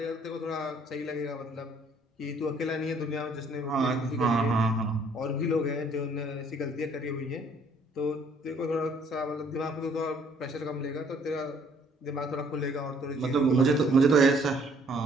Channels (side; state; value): both; normal; correlation 0.62